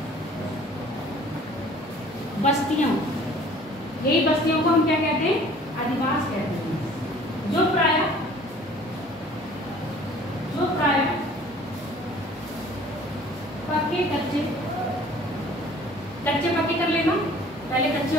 बस्तियों, यही बस्तियों को हम क्या कहते हैं? अधिवास कहते हैं। जो प्राय पक्के कच्चे, कच्चे पक्के कर लेना, पहले कच्चे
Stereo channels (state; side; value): normal; both; correlation 0.51